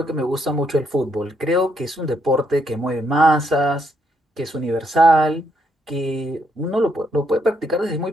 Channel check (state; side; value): normal; both; correlation 0.75